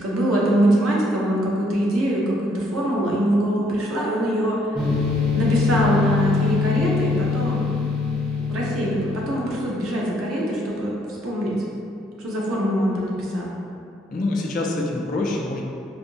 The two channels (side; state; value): both; normal; correlation 0.69